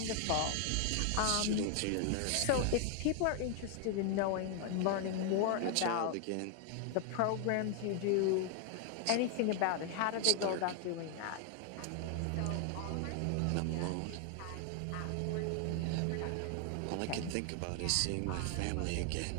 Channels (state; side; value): different; both; correlation 0.00